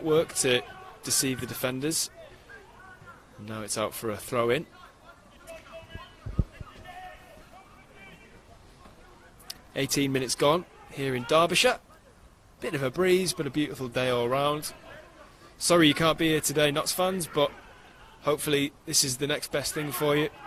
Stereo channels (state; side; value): identical; both; correlation 1.00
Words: to deceive the defenders. And now it's out for a throw-in. "18 minutes gone here in Derbyshire. Bit of a breeze, but a beautiful day all round. Sorry you can't be here today, Notts fans, but hopefully this is the next best thing for you,